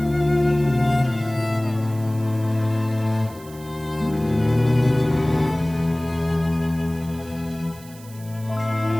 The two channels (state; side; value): noise; right; hiss, 21 dB below the sound